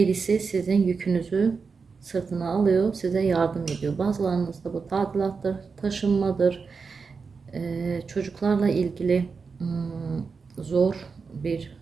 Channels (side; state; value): left; quieter; 5.0 dB